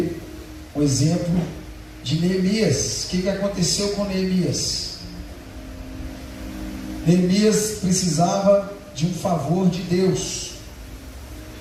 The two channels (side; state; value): both; identical; correlation 1.00